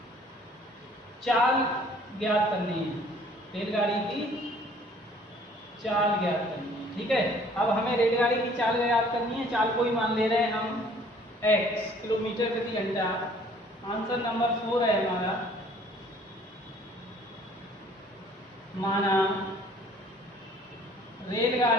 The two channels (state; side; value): normal; both; correlation 0.56